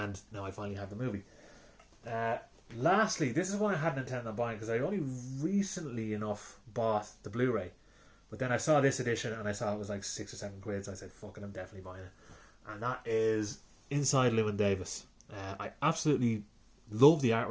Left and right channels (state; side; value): identical; both; correlation 1.00